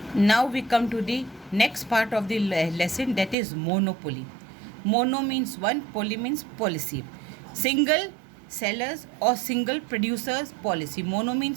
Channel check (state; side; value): drops out; left; at 3.4 s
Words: Now we come to the next part of the lesson, that is monopoly. Mono means one, poly means policy. Single sellers or single producers policy. Mono